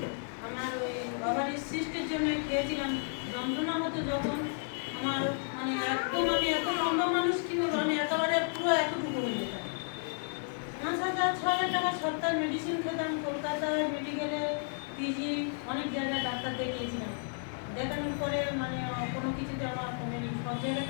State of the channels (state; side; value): silent; right; 56 dB below the other